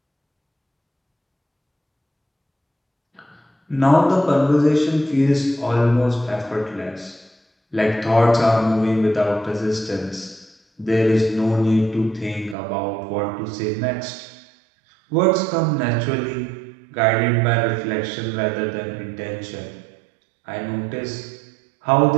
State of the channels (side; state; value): left; drops out; at 12.6 s